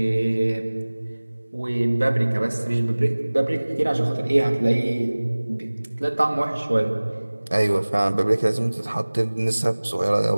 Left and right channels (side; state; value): both; inverted; correlation -1.00